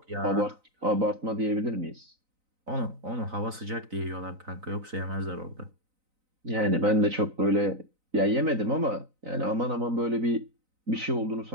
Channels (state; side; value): late; left; 3.9 ms